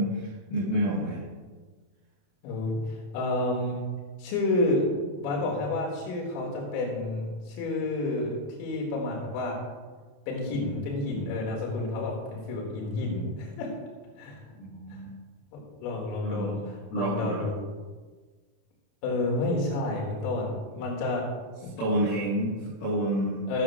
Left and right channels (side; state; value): right; late; 28 ms